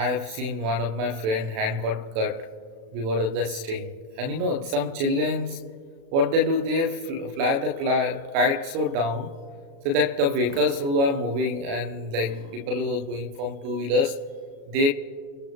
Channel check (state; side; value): late; left; 36 ms